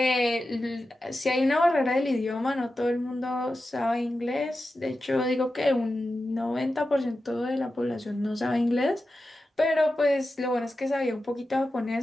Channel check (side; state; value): both; normal; correlation 0.92